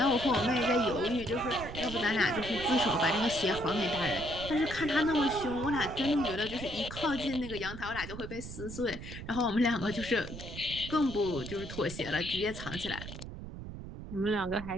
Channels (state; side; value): noise; right; rumble, 10 dB below the sound